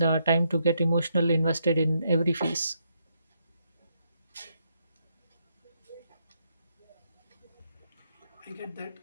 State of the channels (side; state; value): both; inverted; correlation -0.78